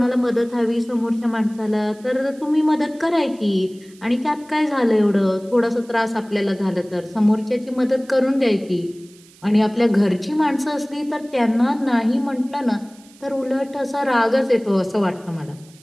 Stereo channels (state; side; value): noise; right; hiss, 26 dB below the sound